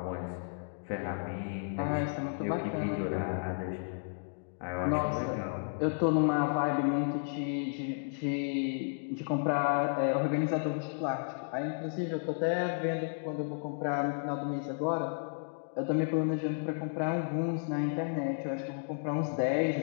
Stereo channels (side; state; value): right; silent; digital silence